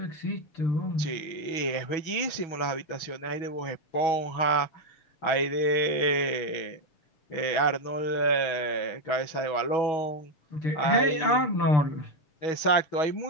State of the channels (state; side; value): late; right; 6.2 ms